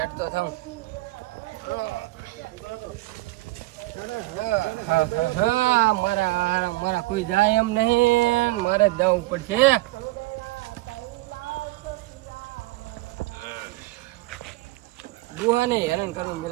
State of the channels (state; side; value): quieter; left; 19.9 dB